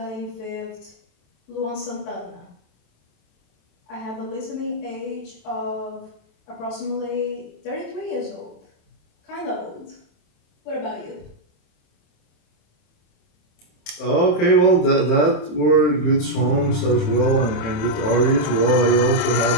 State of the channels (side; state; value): right; late; 27 ms